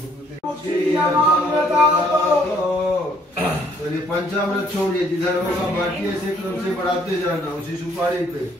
पंचामृत छोड़िए, जिधर होगा बाटिए से क्रम से बढ़ाते जाना, उसी सुपारी पे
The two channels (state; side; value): normal; both; correlation 0.64